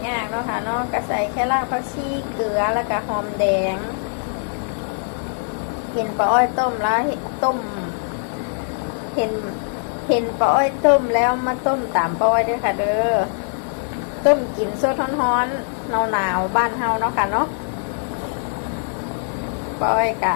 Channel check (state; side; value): silent; right; 64 dB below the other